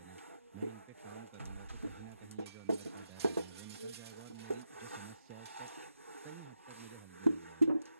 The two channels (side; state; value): both; inverted; correlation -0.87